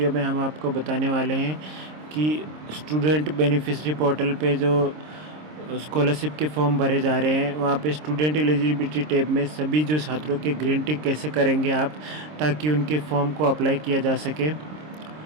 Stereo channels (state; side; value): late; left; 26 ms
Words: में हम आपको बताने वाले हैं कि स्टूडेंट बेनिफिशरी पोर्टल पे जो स्कॉलरशिप के फॉर्म भरे जा रहे हैं, वहाँ पे स्टूडेंट एलिजिबिलिटी टैब में सभी जो छात्रों के ग्रीन टिक कैसे करेंगे आप, ताकि उनके फॉर्म को अप्लाई किया जा सके।